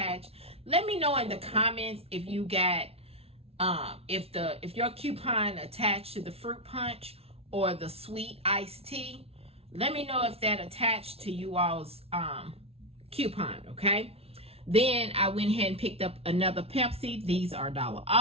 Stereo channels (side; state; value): left; late; 0.29 ms